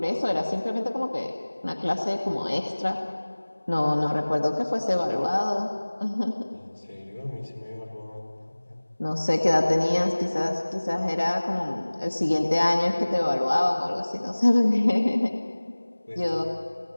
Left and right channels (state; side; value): inverted; both; correlation -1.00